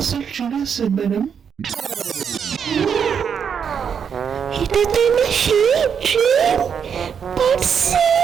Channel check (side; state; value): left; quieter; 7.3 dB